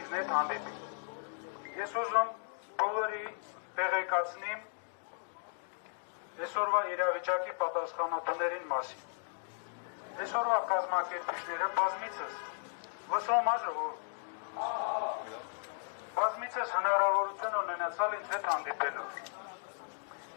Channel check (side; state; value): right; silent; digital silence